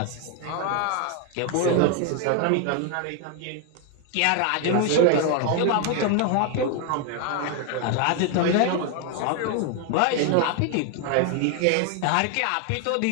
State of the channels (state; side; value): different; both; correlation 0.01